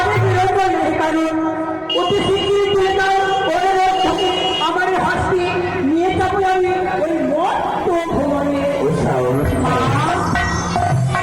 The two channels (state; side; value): identical; both; correlation 1.00